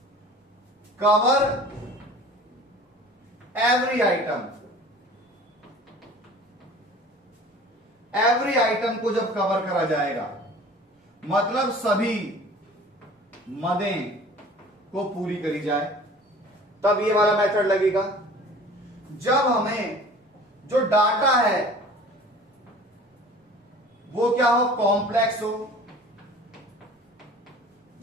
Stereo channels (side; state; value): both; normal; correlation 0.45